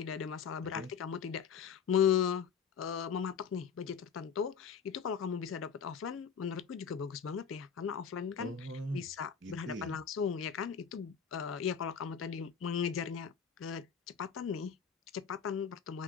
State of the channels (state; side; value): quieter; right; 7.0 dB